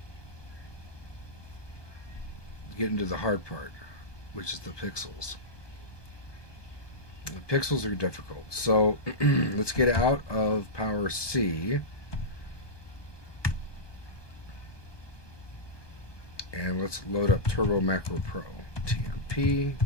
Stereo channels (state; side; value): late; right; 1.2 ms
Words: get into the hard part, which is the pixels. The pixels are difficult. So let's get out of Power C. And let's load up Turbo Macro Pro. TMP,